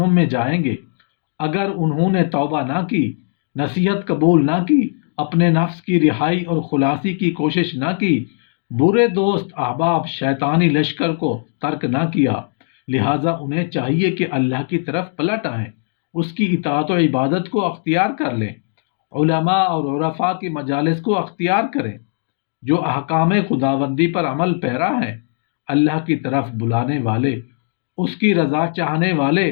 میں جائیں گے اگر انہوں نے توبہ نہ کی، نصیحت قبول نہ کی، اپنے نفس کی رہائی اور خلاصی کی کوشش نہ کی، برے دوست احباب شیطانی لشکر کو ترک نہ کیا، لہٰذا انہیں چاہیے کہ اللہ کی طرف پلٹ آئیں، اس کی اطاعت و عبادت کو اختیار کر لیں، علماء اور عرفاء کی مجالس کو اختیار کریں، جو احکام خداوندی پر عمل پیرا ہیں، اللہ کی طرف بلانے والے، اس کی رضا چاہنے والے،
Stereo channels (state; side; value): silent; right; digital silence